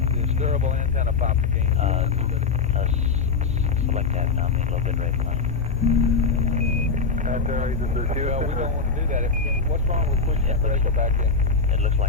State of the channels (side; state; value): right; quieter; 4.7 dB